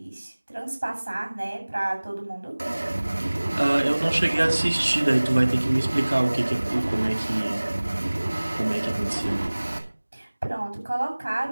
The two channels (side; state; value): both; inverted; correlation -1.00